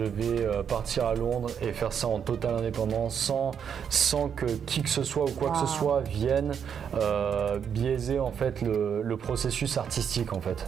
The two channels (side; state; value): left; quieter; 7.7 dB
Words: vais partir à Londres et faire ça en totale indépendance, sans que qui que ce soit ou quoi que ce soit vienne biaiser en fait le processus artistique, en fait.